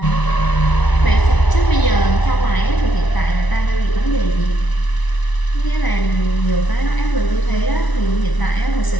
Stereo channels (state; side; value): late; right; 1.0 ms